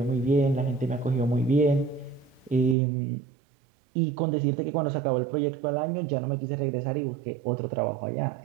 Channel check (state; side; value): drops out; left; at 2.8 s